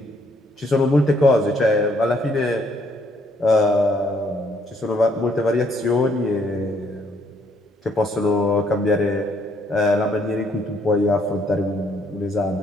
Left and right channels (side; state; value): both; normal; correlation 0.68